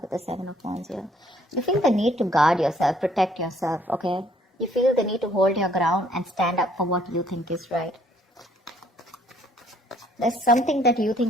the Seven of Wands here. You feel the need to guard yourself, protect yourself, okay? You feel the need to hold your ground and stand up for what you think is right. There's something that you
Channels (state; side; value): normal; both; correlation 0.63